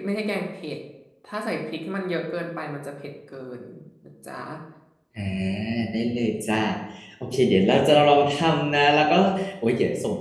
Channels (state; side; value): identical; both; correlation 1.00